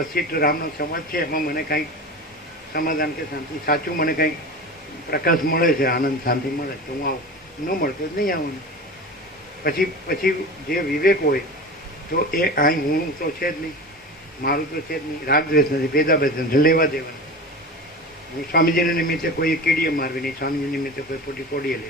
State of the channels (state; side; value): normal; both; correlation 0.30